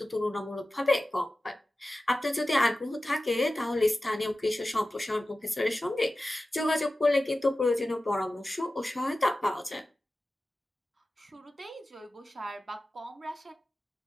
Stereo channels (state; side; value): normal; both; correlation 0.95